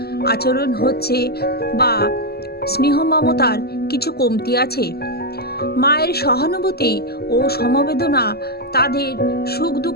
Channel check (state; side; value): late; right; 0.46 ms